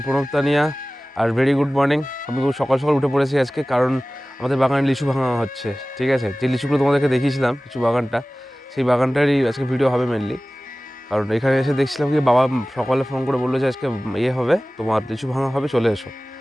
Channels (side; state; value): both; normal; correlation 0.97